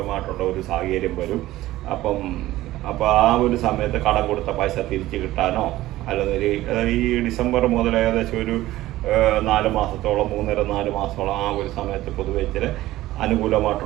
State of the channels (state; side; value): quieter; left; 16.1 dB